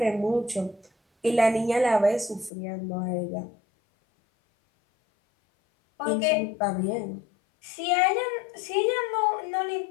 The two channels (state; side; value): drops out; right; at 2.5 s